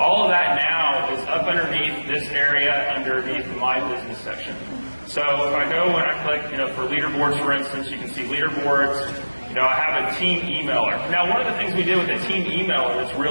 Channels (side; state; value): both; inverted; correlation -1.00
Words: of that now is up underneath this area underneath the My Business section. So if I go and I click, for leaderboards, for instance, you can see leaderboards. I have a team emailer. Now, one of the things we did with the team emailer that's